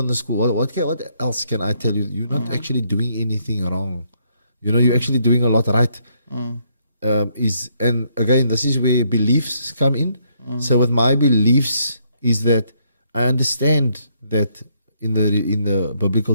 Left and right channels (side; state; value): both; inverted; correlation -0.72